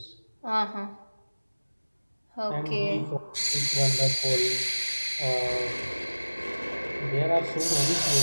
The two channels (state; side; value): inverted; both; correlation -1.00